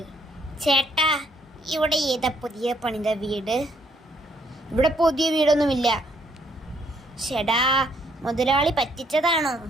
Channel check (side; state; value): both; normal; correlation 0.68